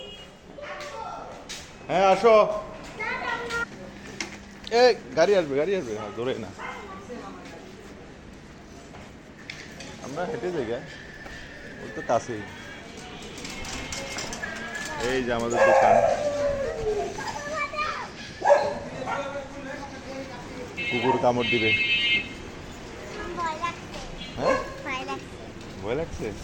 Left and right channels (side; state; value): both; identical; correlation 1.00